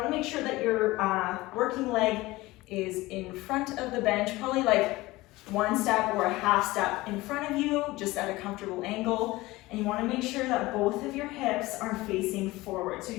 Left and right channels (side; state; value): right; quieter; 19.7 dB